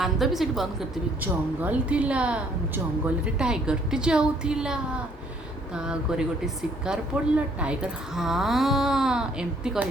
भी सेठी बंद करते जंगल थिला जंगल रे टाइगर टी जाऊला तागरे गोटे शिकार पड़ला टाइगर हाँ एमती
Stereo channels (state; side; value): normal; both; correlation 0.63